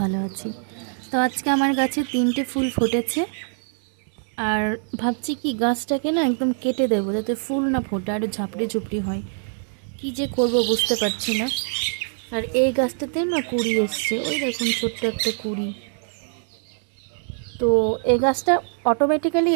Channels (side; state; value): left; silent; digital silence